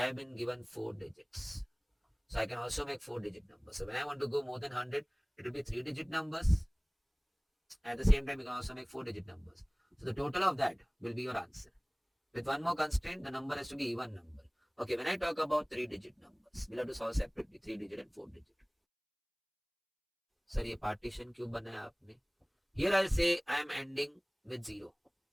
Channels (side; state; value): both; identical; correlation 1.00